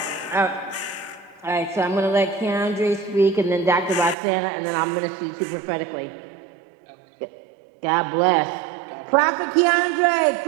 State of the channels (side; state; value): left; drops out; at 4.2 s